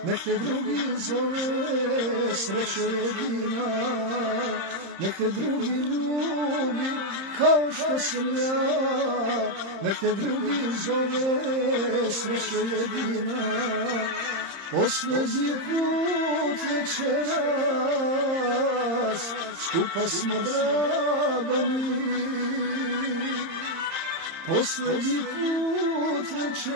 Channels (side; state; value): left; late; 30 ms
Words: nek te drugi zove srećo jedina, nek te drugi ljubi kao što sam ja, nek te drugi zove srećo jedina. Posljednji put večeras skupa smo, draga mi. Posljednji put